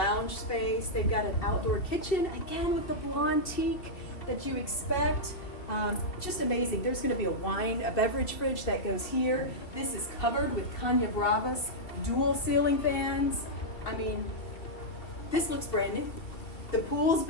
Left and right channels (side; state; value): right; late; 2.7 ms